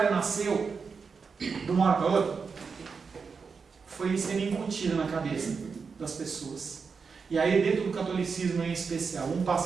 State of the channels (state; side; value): quieter; left; 5.3 dB